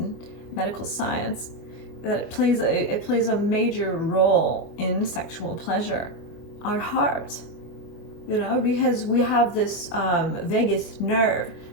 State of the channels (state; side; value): late; right; 24 ms